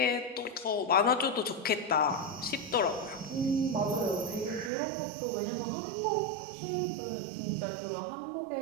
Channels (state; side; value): drops out; left; at 4.7 s